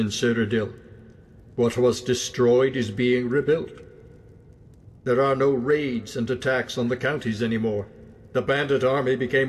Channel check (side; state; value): both; identical; correlation 1.00